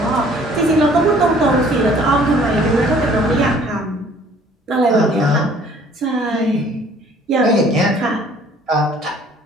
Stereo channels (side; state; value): both; normal; correlation 0.56